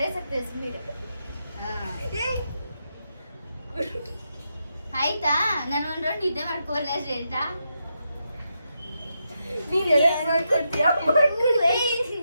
ಸ್ಪೀಡ್. ಆಯ್ತಾ? ನಾನು ಒಂದ್ ರೌಂಡ್ ನಿದ್ದೆ ಮಾಡ್ಕೋಲ್ಲ ಹೇಳ್ತಾ. ನೀನ್ ಎಲ್ಲ ಮಾಡ್ಕೊಡ್ತೀಯಾ? ಮಾಡ್ಕೊಡು.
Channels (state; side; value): inverted; both; correlation -0.84